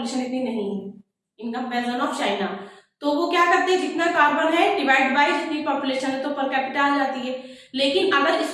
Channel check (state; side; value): identical; both; correlation 1.00